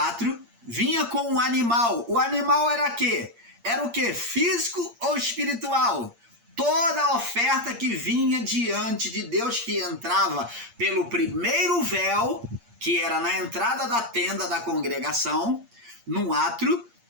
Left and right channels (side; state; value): left; late; 8.6 ms